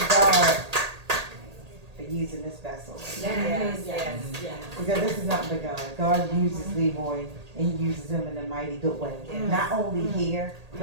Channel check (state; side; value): late; left; 1.8 ms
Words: God for using this vessel. Yes. Because this is nothing but God. God uses Leroy and he uses him in a mighty good way. Not only here,